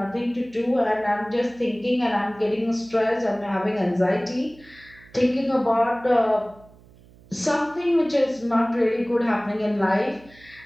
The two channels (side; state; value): right; noise; hum, 25 dB below the sound